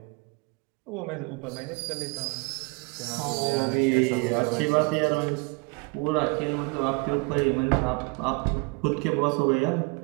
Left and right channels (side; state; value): left; quieter; 29.7 dB